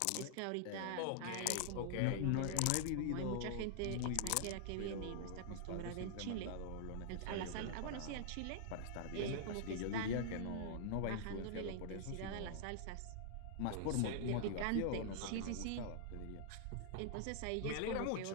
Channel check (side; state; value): both; different; correlation -0.01